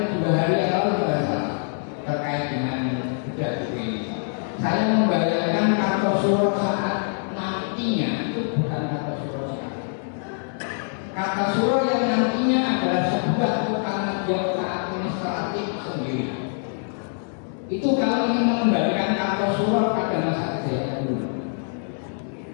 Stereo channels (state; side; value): silent; right; 60 dB below the other